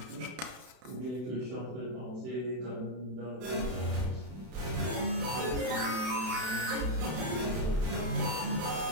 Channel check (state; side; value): late; left; 32 ms